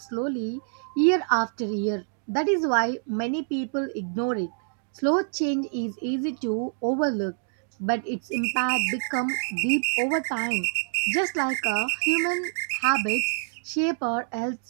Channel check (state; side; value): silent; left; digital silence